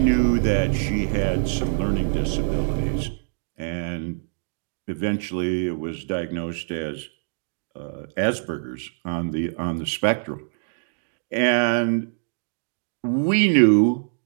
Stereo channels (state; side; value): silent; left; digital silence